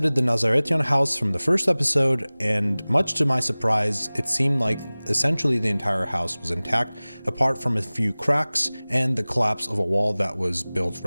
the Nazaretian house from the first episode, and much to my surprise, it seemed like essentially the entire house was intact, apart from a few cracks and the collapse of a wall that was built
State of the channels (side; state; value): both; inverted; correlation -0.99